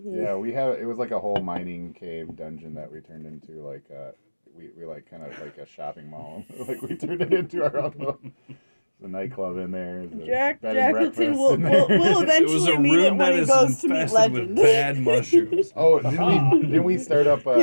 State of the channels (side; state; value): both; inverted; correlation -1.00